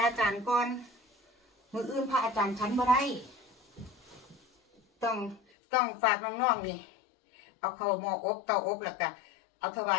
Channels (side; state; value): right; drops out; at 5.4 s